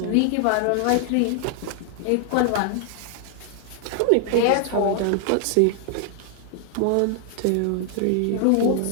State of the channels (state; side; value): different; both; correlation 0.00